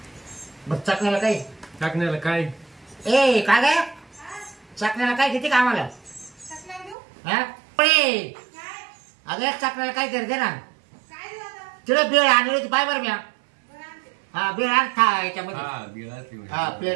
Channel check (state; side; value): drops out; left; at 7.0 s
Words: मग चकण्याला काही टाकण्याला काय ए काय काय चकण्याला काय किती कामाला चकल्या देऊ? हा पळे काय? अगं चकण्याला काय तरी दे ना. काय देऊ आता? तिला बेळ आणली होती पाय बरं म्या. बरं आणते. हा बेळ आण था याच्यामध्ये. हा बिळा ते हा